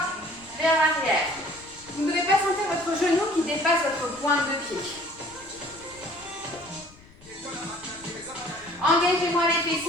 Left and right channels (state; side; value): noise; left; rumble, 24 dB below the sound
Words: vers l'arrière. Vous ne devez pas sentir votre genou qui dépasse votre pointe de pied. Engagez-moi les